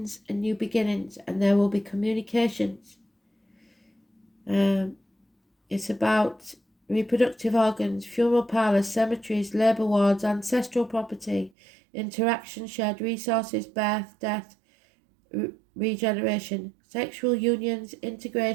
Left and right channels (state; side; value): drops out; left; at 11.5 s